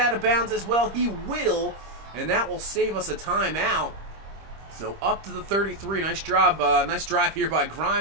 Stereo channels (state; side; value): late; left; 25 ms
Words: of bounds as well? He will, and that will save us a timeout. So up to the 33. Nice job, nice drive here by